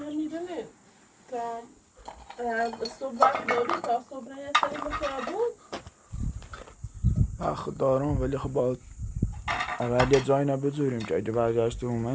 میدونه تا صبح وقت داری تا صبح یه سری بخیابون وقت دارم ولی خب باید اول یه جایی نبذاریم که اگه برگشتیم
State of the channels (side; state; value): both; identical; correlation 1.00